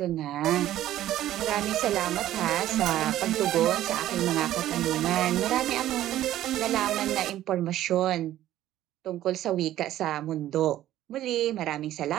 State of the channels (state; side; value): quieter; left; 13.3 dB